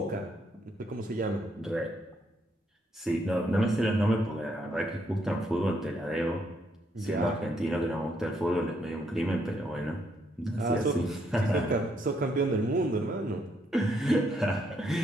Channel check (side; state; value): both; normal; correlation 0.74